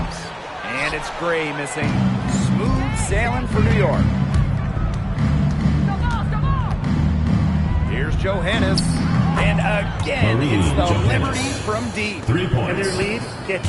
And it's Gray missing. Smooth sailing for New York. Here's Johannes. And again, it's the Liberty from deep. 3 points. And their lead gets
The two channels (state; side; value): identical; both; correlation 1.00